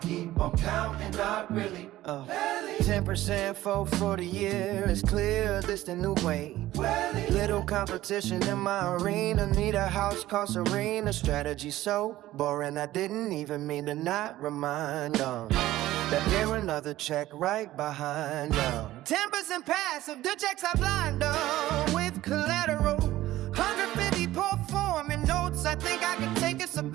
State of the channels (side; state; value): left; quieter; 15.4 dB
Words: keep on counting. Not really. 10% for the year. It's clear this the new way. Little competition in my arena. Need a house cost arena. Strategy so boring I didn't even mean to not remind them that there another check right behind them. 10% passive, the checks I blind them with collateral. 150 performing notes. I think I can take a